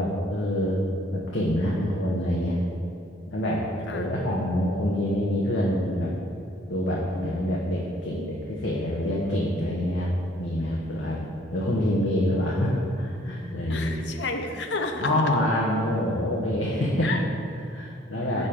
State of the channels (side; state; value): both; normal; correlation 0.59